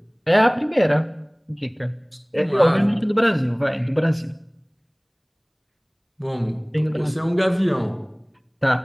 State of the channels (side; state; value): both; identical; correlation 1.00